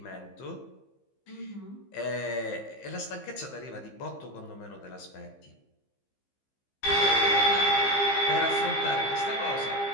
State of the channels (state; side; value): late; right; 15 ms